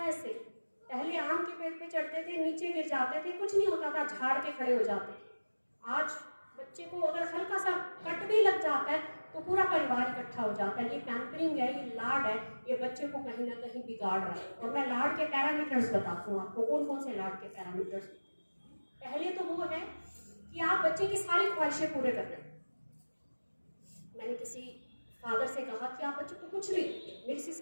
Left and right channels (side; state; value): both; inverted; correlation -1.00